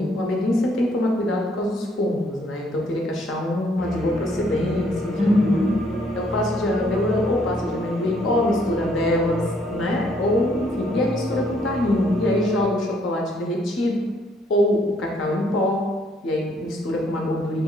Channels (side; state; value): both; normal; correlation 0.67